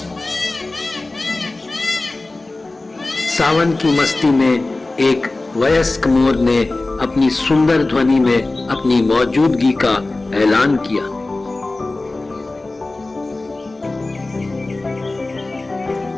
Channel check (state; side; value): quieter; right; 3.1 dB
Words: सावन की मस्ती में एक वयस्क मोर ने अपनी सुंदर ध्वनि में अपनी मौजूदगी का ऐलान किया।